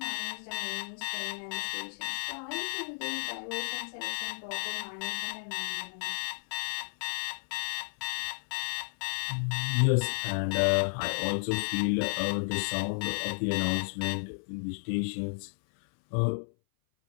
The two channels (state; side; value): silent; right; 56 dB below the other